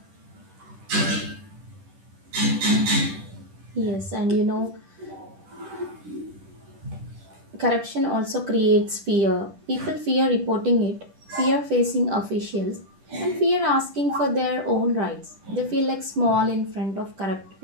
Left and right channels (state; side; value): late; left; 10 ms